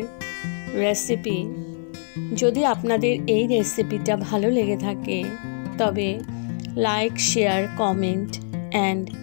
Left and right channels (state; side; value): silent; right; 55 dB below the other